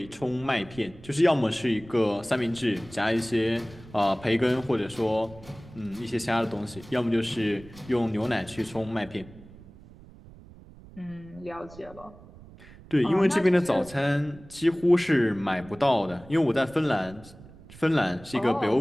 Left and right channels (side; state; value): right; noise; rumble, 20 dB below the sound